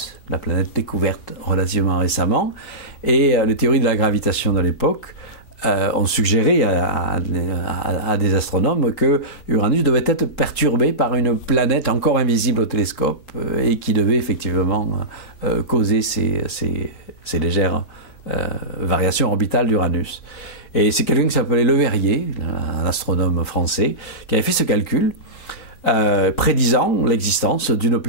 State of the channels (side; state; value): right; late; 3.9 ms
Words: la planète découverte relativement récemment, et les théories de la gravitation de l'époque ont suggéré à des astronomes que Uranus devait être perturbé par une planète encore invisible au télescope et qui devait effectivement causer ces légères variations orbitales d'Uranus. Et c'est quelqu'un qui s'appelait Le Verrier, un astronome français, qui avait fait ce calcul prédisant l'existence d'une